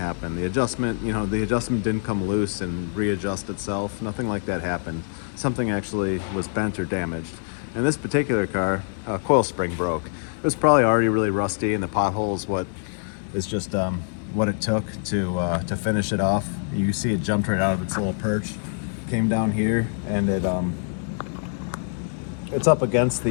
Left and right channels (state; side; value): silent; right; 62 dB below the other